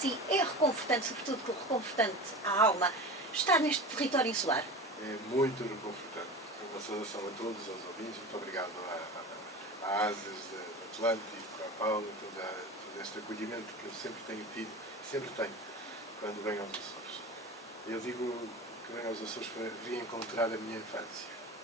é reconfortante, sobretudo reconfortante à alma, estar neste território insular? É muito reconfortante. Uma saudação a todos, aos ouvintes, muito obrigado à ASAS, do Atlântico, à Paula, todo este acolhimento que eu sempre tenho tido, sempre tenho, quando venho aos Açores. Eu digo que venho aos Açores para reencontrar a minha infância.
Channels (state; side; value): normal; both; correlation 0.31